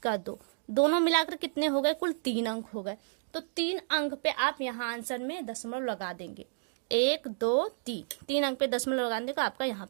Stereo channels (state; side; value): silent; left; digital silence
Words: 2, दोनों मिलाकर कितने हो गए, कुल 3 अंक हो गए। तो 3 अंक पे आप यहाँ आंसर में दशमलव लगा देंगे, 1 2 3 अंक पे दशमलव लगा देंगे तो आपका यहाँ